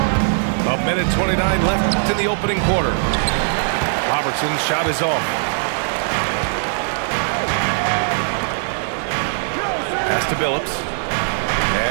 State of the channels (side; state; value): left; silent; 56 dB below the other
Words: A minute 29 left in the opening quarter. Robertson's shot is off. Pass to Billups.